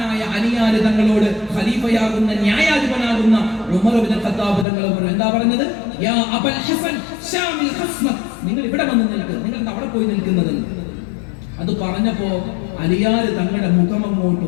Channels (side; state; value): right; drops out; at 4.7 s